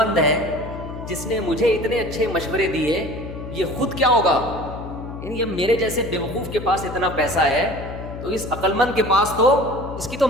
ہے, جس نے مجھے اتنے اچھے مشورے دیے یہ خود کیا ہوگا؟ یعنی اب میرے جیسے بیوقوف کے پاس اتنا پیسہ ہے تو اس عقل مند کے پاس تو اس کی تو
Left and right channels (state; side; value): noise; left; hum, 10 dB below the sound